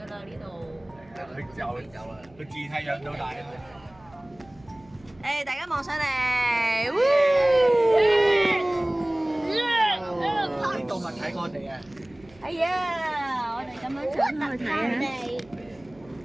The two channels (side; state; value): right; noise; hum, 27 dB below the sound